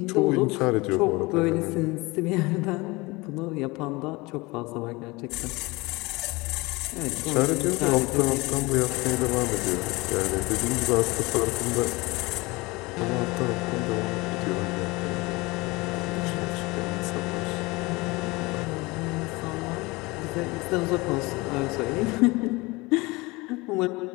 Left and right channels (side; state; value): right; quieter; 23.5 dB